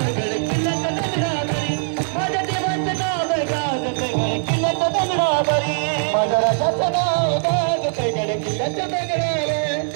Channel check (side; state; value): left; silent; digital silence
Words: गड किल्ल्याच्या दगडावरी माझ्या देवाचं नाव गाजते गड किल्ल्याच्या दगडावरी माझ्या राजाचं नाव गाजते गड किल्ल्याच्या